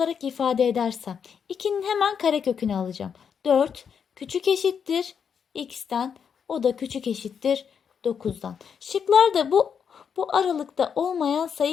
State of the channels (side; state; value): right; quieter; 7.1 dB